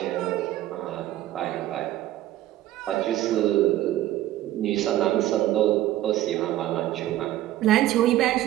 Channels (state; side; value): quieter; left; 14.2 dB